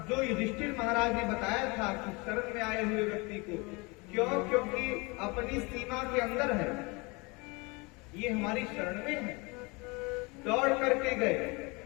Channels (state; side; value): quieter; right; 27.3 dB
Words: जो युधिष्ठिर महाराज ने बताया था कि शरण में आए हुए व्यक्ति को, क्यों? क्योंकि अपनी सीमा के अंदर है, ये हमारी शरण में है। दौड़ करके गए